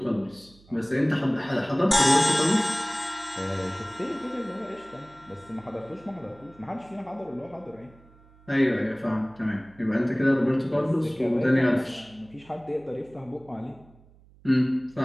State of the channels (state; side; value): noise; right; hum, 26 dB below the sound